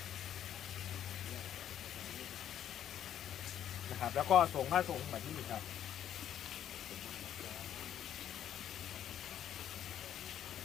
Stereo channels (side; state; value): right; quieter; 10.4 dB